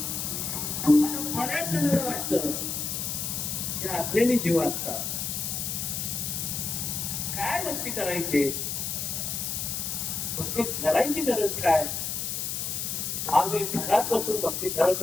बऱ्याच जणांना वाटतं की अज्ञानी जीव असतात. काय भक्ती करायची? भक्ती करायची गरज काय? आम्ही घरात बसून भक्ती करत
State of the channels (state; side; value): noise; left; hiss, 2 dB below the sound